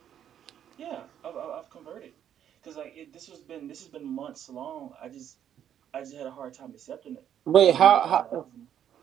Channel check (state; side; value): quieter; left; 9.8 dB